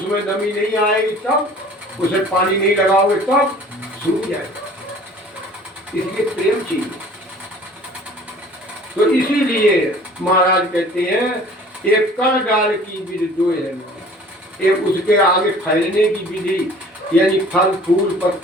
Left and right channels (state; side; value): normal; both; correlation 0.49